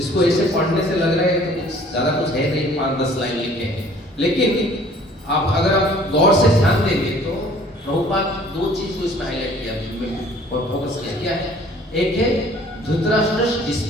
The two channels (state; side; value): normal; both; correlation 0.54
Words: ऐसे पढ़ने से लग रहा है कि कुछ ज़्यादा कुछ है नहीं, 5-10 लाइन लिखे हैं, लेकिन आप अगर आप गौर से ध्यान देंगे तो प्रभुपाद 2 चीज को इसमें हाईलाइट किया और फोकस किया। क्या है, एक है Dhritarashtra's